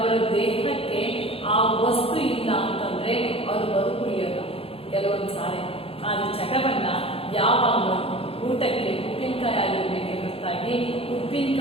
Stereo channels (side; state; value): right; late; 0.27 ms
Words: ದೇಹಕ್ಕೆ ಆ ವಸ್ತು ಇಲ್ಲ ಅಂತಂದ್ರೆ ಅವರು ಬದುಕುಳಿಯಲ್ಲ ಕೆಲವೊಂದು ಸಾರಿ. ಆದ್ರೆ ಚಟವನ್ನ ಯಾವಾಗ ಊಟಕ್ಕೆ ಉಪ್ಪಿನಕಾಯಿ ಆಗಿರ್ಬೇಕೆ ಹೊರತಾಗಿ